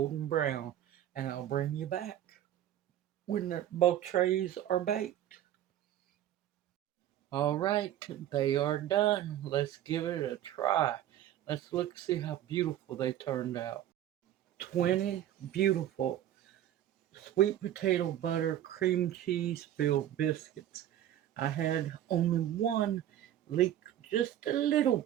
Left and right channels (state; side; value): quieter; left; 11.9 dB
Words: brown. And I'll bring you back when both trays are baked. Alright, they are done. Let's give it a try. Let's look see how beautiful they turned out. 20 beautiful sweet potato butter cream cheese filled biscuits. I had only one leak just a little